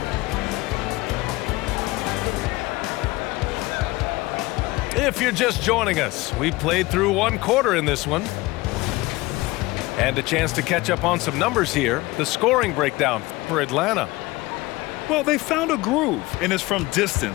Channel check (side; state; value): right; quieter; 20.9 dB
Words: If you're just joining us, we played through 1 quarter in this one. And a chance to catch up on some numbers here. The scoring breakdown for Atlanta. Well, they found a groove, and it's from